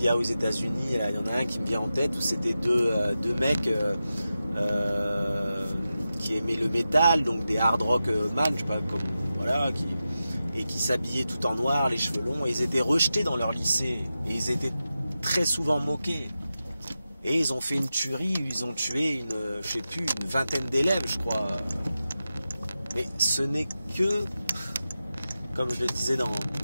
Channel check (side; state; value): both; inverted; correlation -0.92